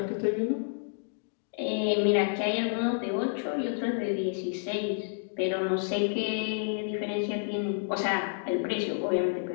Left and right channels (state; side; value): silent; right; digital silence